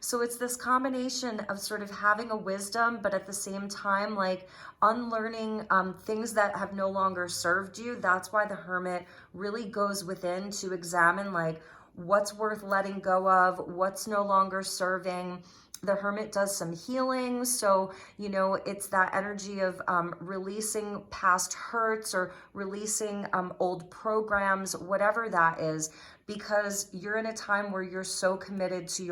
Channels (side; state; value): both; identical; correlation 1.00